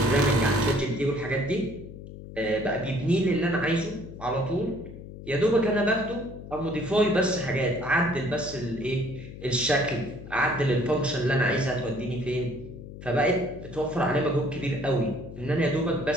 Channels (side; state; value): left; noise; hum, 13 dB below the sound